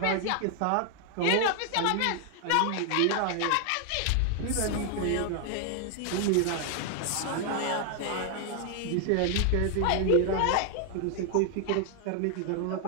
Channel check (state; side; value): different; both; correlation 0.00